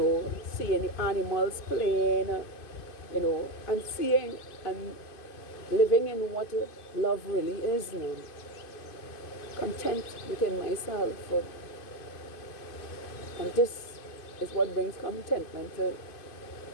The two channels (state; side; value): late; right; 2.5 ms